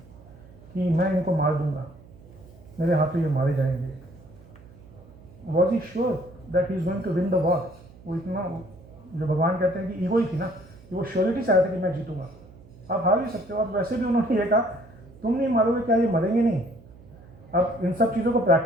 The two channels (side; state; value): right; noise; hum, 22 dB below the sound